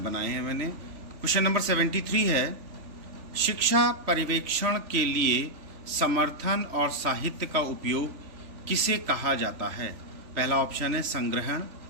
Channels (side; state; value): left; late; 3.1 ms